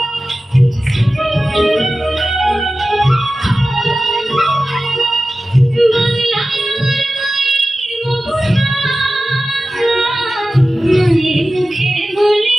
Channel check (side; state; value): both; normal; correlation 0.95